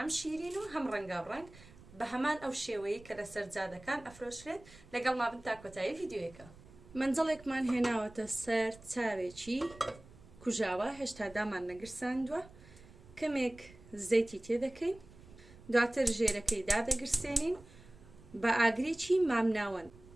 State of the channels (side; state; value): right; noise; rumble, 21 dB below the sound